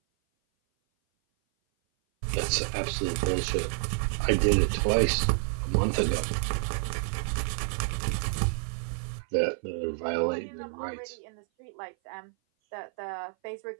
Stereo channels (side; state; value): left; silent; 56 dB below the other